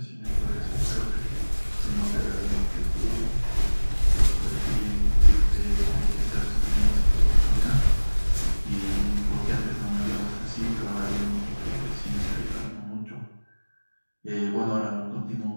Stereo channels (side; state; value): both; inverted; correlation -1.00